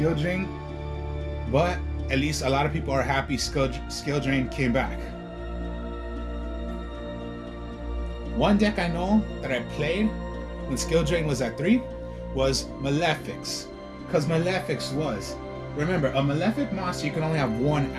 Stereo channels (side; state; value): both; identical; correlation 1.00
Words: Drain, but at least a lot of people are happy Skill Drain came back. One deck I know that I played when Skill Drain was at 3 was Malefics. Because Malefics was, remember, a Malefic monster you can only have 1